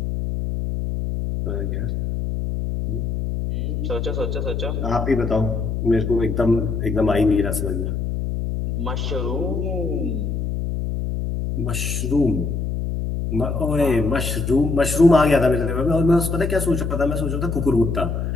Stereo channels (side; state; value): left; noise; hum, 2 dB below the sound